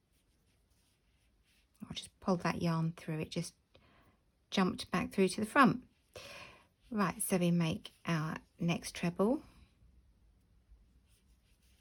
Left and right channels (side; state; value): both; identical; correlation 1.00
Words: I'll just pull that yarn through, it just jumped back through to the front. Right, so we make our next treble.